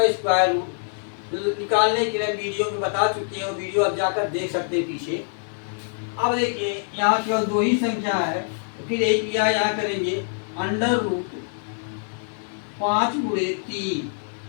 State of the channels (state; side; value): silent; right; digital silence